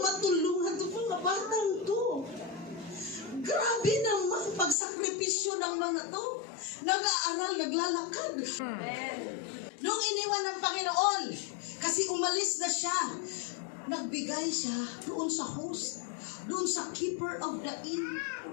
itong mga batang to? Grabe naman pagsakripisyo ng mga to. Nag-aaral, naglalakad. Nung iniwan ng Panginoon, kasi umalis na siya, nagbigay siya doon sa host, doon sa keeper of the inn.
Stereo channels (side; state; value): right; drops out; at 4.8 s